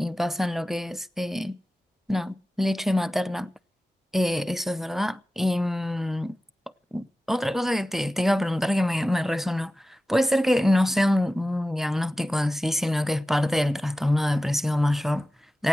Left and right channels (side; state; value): both; normal; correlation 0.95